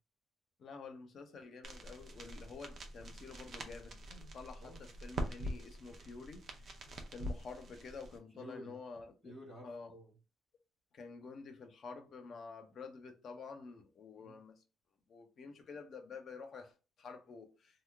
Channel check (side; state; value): both; normal; correlation 0.77